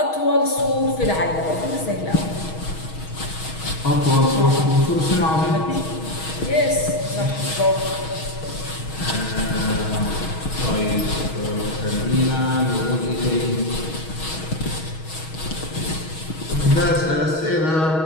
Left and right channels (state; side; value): late; right; 6.3 ms